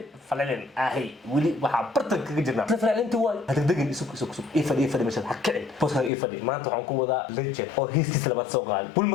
فالعلن آهي ولي وحبرتك كجرنا فالعلن توال هتدقن سوق إيه مشان حكي بوس إيه ما أنتوا عنكم وذا ليجن أو هيستي سلبات سوقال بقول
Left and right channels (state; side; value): drops out; right; at 6.1 s